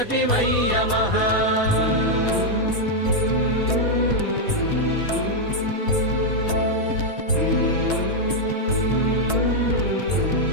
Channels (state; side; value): late; right; 4.2 ms